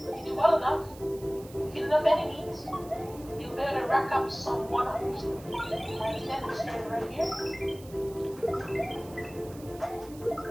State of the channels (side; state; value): right; noise; hiss, 21 dB below the sound